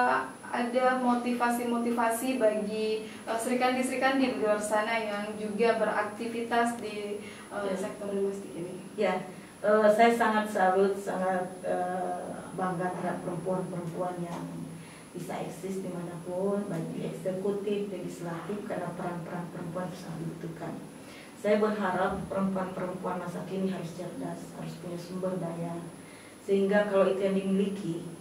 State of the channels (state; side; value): identical; both; correlation 1.00